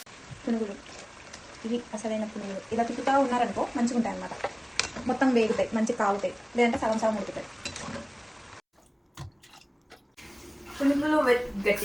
పునుగులు ఇవి అసలైన పునుగులు. ఇలా తిప్పుతా ఉన్నారనుకో మంచిగా ఉంటాయి అన్నమాట. మొత్తం వేగుతాయి, మంచిగా కాగుతాయి. లేదంటే సగం సగం ఉడుకుతాయి. పునుగులు విత్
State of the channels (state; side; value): identical; both; correlation 1.00